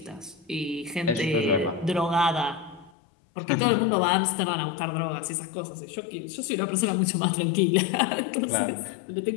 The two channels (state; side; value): drops out; right; at 2.9 s